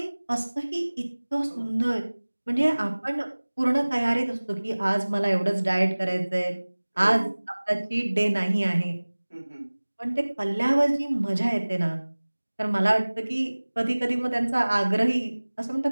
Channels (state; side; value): inverted; both; correlation -1.00